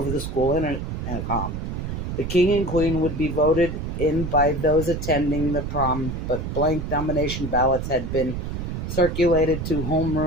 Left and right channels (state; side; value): noise; right; rumble, 4 dB below the sound